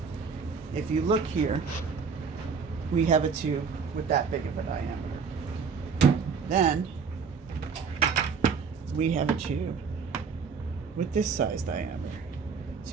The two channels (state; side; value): quieter; left; 5.7 dB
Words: If you look here, we have a tube with that big of a diameter. Then we have a tube with this size diameter. So